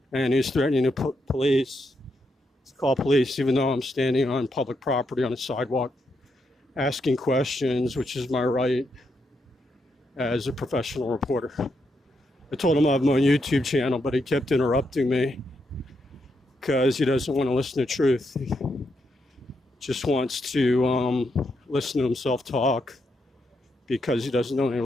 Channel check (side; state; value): both; normal; correlation 0.81